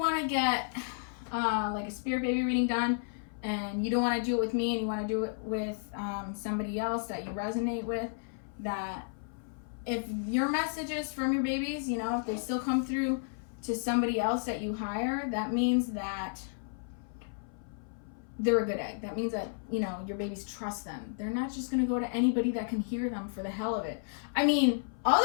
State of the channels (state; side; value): silent; right; 56 dB below the other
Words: to get like a spirit baby reading done, and you don't want to do it with me, and you want to do it with somebody else that you resonate with, that if your messages from your babies, you know, if they still come through to somebody else that you hire, that means that they're a good egg. That means that, you know, your babies trust them. They're not just going to go to anybody that can hear them for the hell of it. I mean,